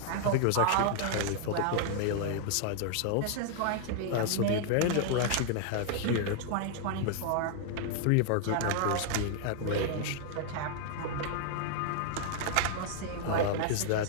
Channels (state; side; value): different; both; correlation -0.01